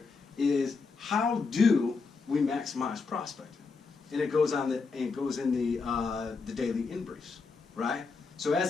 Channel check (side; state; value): right; quieter; 4.6 dB